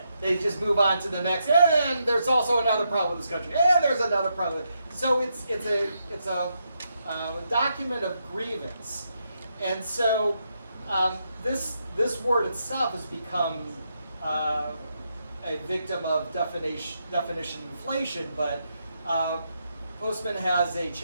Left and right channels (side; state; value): both; inverted; correlation -0.81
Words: They just move on to the next, and there's also another problem with this country, and there's another problem. So it's a document of grievance. And so this word itself has become a victim of definition inflation, but Postman has a